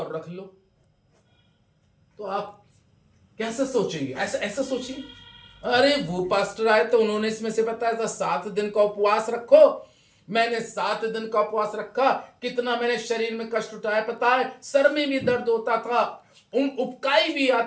रख लो, तो आप कैसे सोचेंगे? ऐसा सोचिए, अरे वो पास्टर आए तो उन्होंने इसमें से बताया था 7 दिन का उपवास रखो, मैंने 7 दिन का उपवास रखा, कितना मैंने शरीर में कष्ट उठाया पता है, सर में भी दर्द होता था, उबकाई भी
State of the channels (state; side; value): identical; both; correlation 1.00